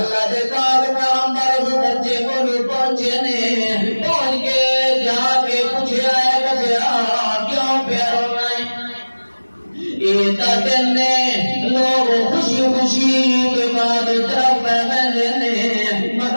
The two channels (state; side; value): inverted; both; correlation -1.00